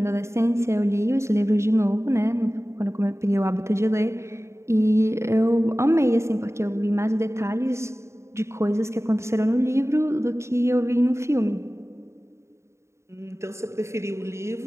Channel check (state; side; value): late; left; 0.14 ms